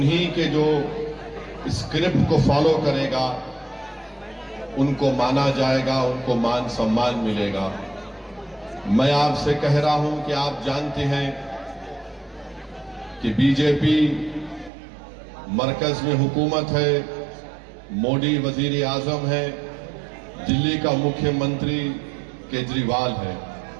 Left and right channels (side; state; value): left; drops out; at 14.7 s